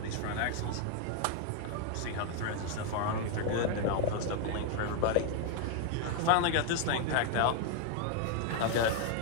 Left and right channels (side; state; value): both; different; correlation 0.01